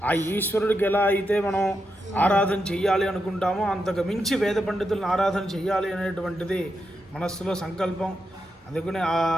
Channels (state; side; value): normal; both; correlation 0.85